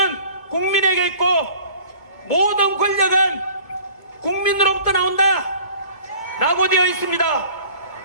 국민에게 있고 모든 권력은 국민으로부터 나온다 라고 되어 있습니다.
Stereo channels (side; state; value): right; late; 2.2 ms